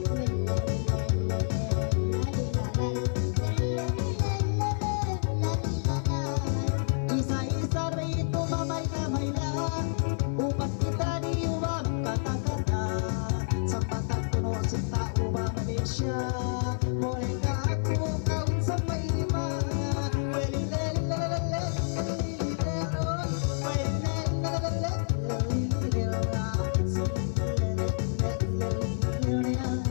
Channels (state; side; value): silent; right; 59 dB below the other